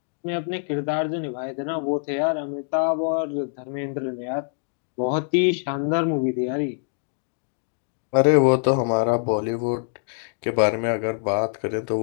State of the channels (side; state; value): right; silent; digital silence